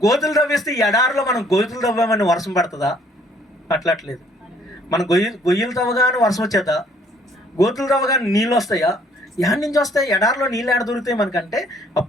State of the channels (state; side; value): normal; both; correlation 0.62